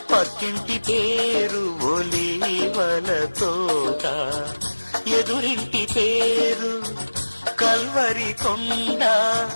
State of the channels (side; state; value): both; inverted; correlation -1.00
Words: పక్కింటి పేరు ఒలీవల తోట. ఎదురింటి పేరు కల్వరి కొండ,